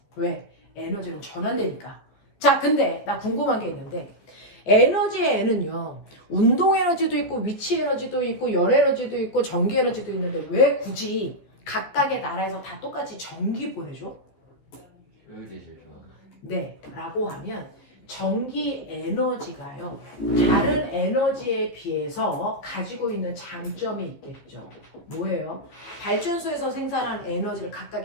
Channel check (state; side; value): late; right; 14 ms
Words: 왜? 에너지는 전환되니까. 자, 근데 나 궁금한 게 있는데 에너지의 N은요. 운동 에너지도 있고 위치 에너지도 있고 열 에너지도 있고 전기 에너지도 있는데 왜 굳이 각각의 나라에서 다 똑같이 전기 보내줘? 효율이 제일 좋아. 네, 라고 하면 전기 에너지가요. 다른 에너지에 비해서 가지고 있는 장점이 있겠죠. 뭐예요? 발전소에서 생산한 에너지를